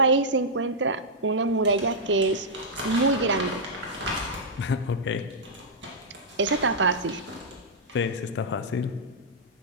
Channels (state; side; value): normal; both; correlation -0.09